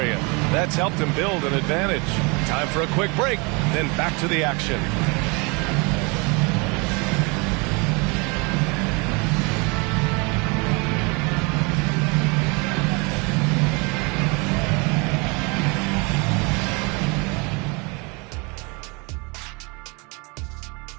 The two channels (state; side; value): quieter; left; 29.6 dB